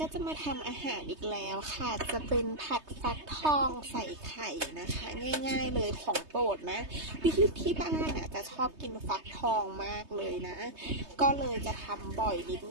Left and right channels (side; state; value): left; late; 3.2 ms